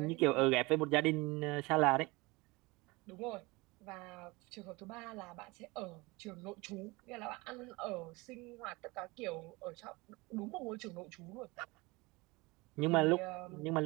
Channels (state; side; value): quieter; left; 23.9 dB